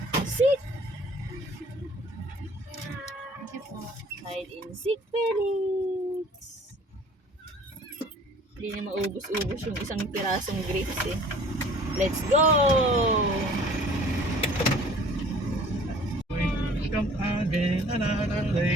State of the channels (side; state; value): both; normal; correlation 0.51